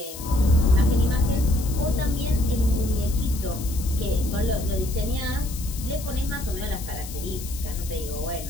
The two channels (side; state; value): left; noise; hiss, 12 dB below the sound